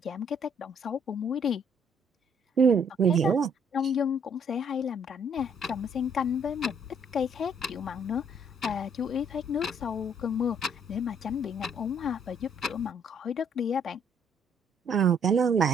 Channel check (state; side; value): normal; both; correlation 0.65